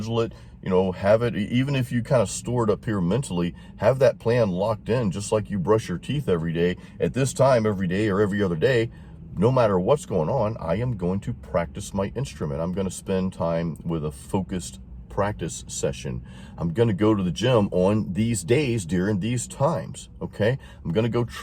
it, have it, even if you kind of store it up here mentally, have that plan locked in, just like you brush your teeth every day. At this time, every day or every other day, no matter what's going on, I am going to practice my instrument. I'm going to spend time with a focused practice session. I'm going to go to the gym on these days during these times. Okay. I'm going to go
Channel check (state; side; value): identical; both; correlation 1.00